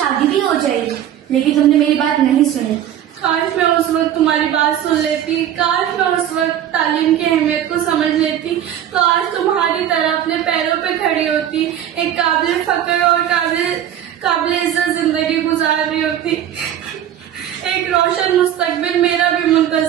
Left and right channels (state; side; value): quieter; left; 10.7 dB